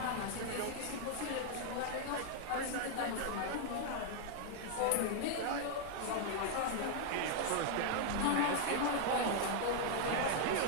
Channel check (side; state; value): both; different; correlation 0.00